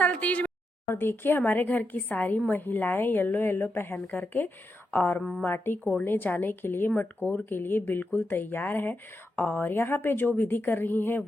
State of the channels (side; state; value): both; normal; correlation 0.85